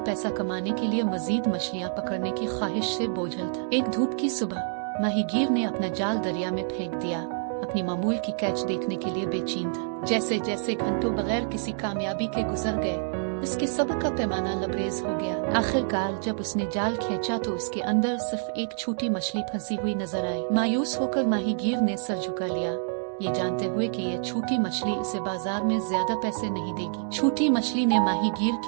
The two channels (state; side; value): silent; left; digital silence